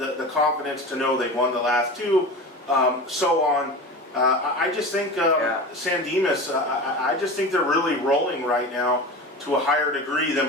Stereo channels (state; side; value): normal; both; correlation 0.30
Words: confidence to know they've won the last two, so on. I just think Yeah. San Dimas, I just think they're really rolling right now to a higher degree